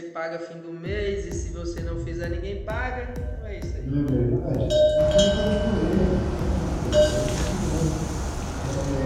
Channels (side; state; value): both; identical; correlation 1.00